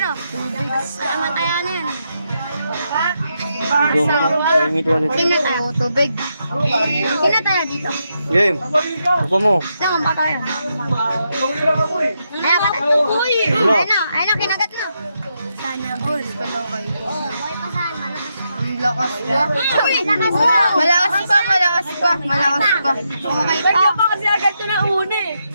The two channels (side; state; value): both; inverted; correlation -0.82